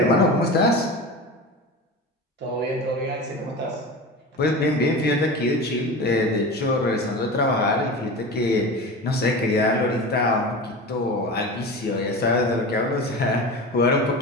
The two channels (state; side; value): normal; both; correlation 0.30